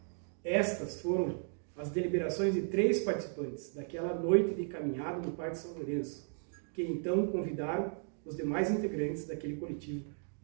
Estas foram as deliberações de 3 participantes daquela noite de caminhada no Parque São Lourenço, que então convidaram os demais integrantes daquele coletivo,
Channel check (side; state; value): left; silent; 54 dB below the other